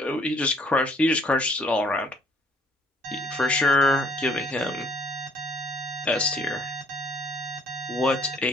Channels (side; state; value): both; normal; correlation 0.61